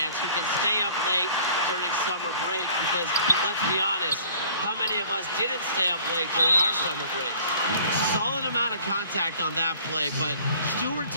who can stay up late during summer break, because let's be honest, how many of us didn't stay up late during our summer breaks? Solid amount of contact on that play, but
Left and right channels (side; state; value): both; inverted; correlation -0.52